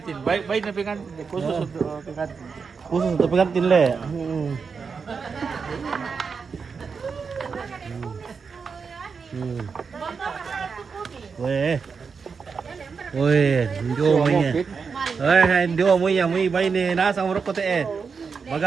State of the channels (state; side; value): quieter; left; 5.5 dB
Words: Baik na pengantin. Khusus untuk pengantin. Khusus untuk pengantin le. Weh. Weh, ndio mo niya. Ndio mo niya, mo bay ni nasa urok ko te.